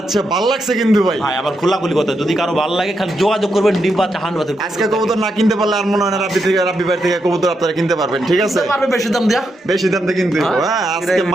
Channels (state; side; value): normal; both; correlation 0.83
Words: ভাল লাগছে কিন্তু ভাই। ভাই আবার খোলাখুলি কথা, যদি কারো ভালো লাগে খালি যোগাযোগ করবেন, ডিম বাচ্চা হান্ড বাচ্চা আজকে কবুতর না কিনতে পারলে আর মনে হয় না রাব্বি ভাই থেকে কবুতর আপনারা কিনতে পারবেন, ঠিক আছে? পারবে বেশি দাম দেয়া। বেশি দাম দিয়ে কিনতে হইবো। হ্যাঁ, হ্যাঁ, আজকে এটাই